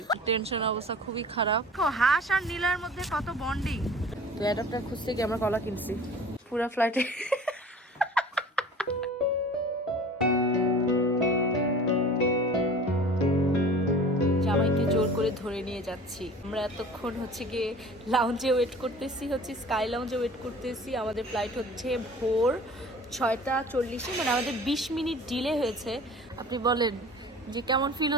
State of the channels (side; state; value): both; normal; correlation 0.43